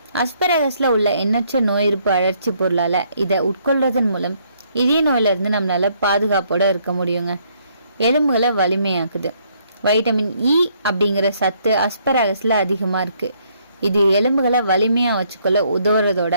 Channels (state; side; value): inverted; both; correlation -0.69